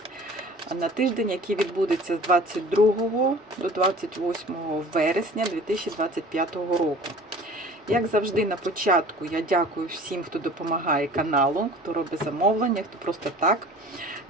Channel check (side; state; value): both; normal; correlation 0.45